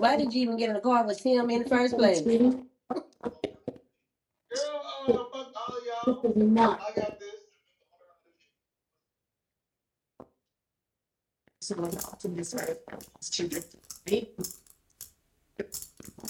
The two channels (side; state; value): both; identical; correlation 1.00